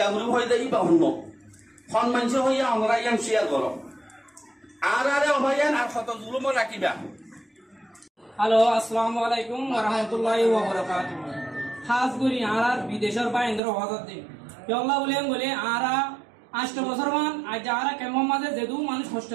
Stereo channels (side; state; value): left; drops out; at 13.6 s